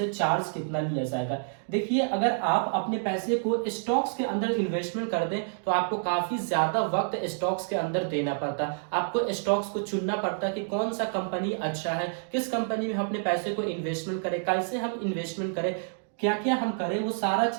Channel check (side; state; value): left; silent; digital silence